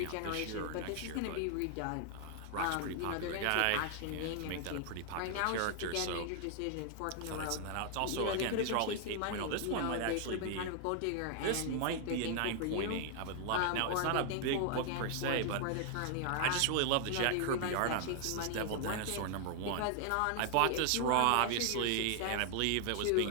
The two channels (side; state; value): both; different; correlation 0.00